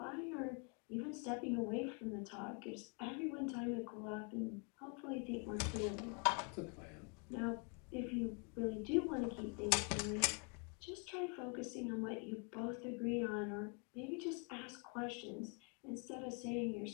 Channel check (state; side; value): quieter; right; 35.8 dB